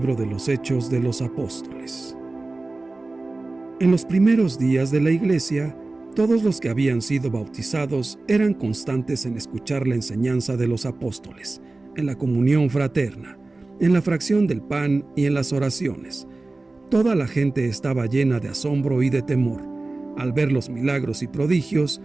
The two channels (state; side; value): quieter; left; 3.2 dB